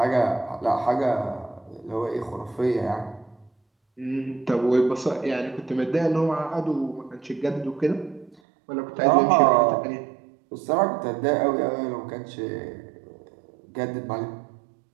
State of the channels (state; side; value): drops out; left; at 8.3 s